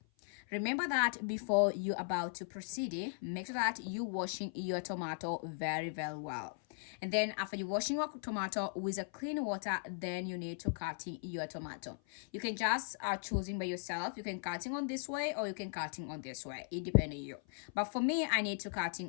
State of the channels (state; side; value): silent; right; 52 dB below the other